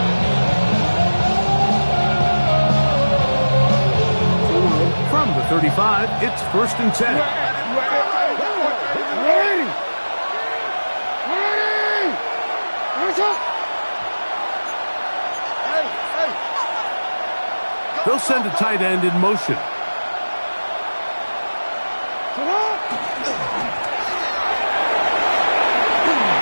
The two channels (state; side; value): inverted; both; correlation -1.00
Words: From the 35, it's 1st and 10. They'll send a tight end in motion.